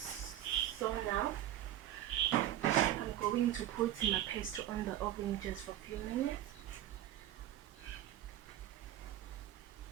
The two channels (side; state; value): left; quieter; 12.8 dB